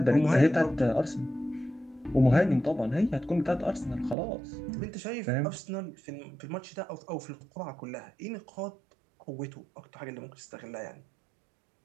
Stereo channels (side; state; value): left; drops out; at 4.2 s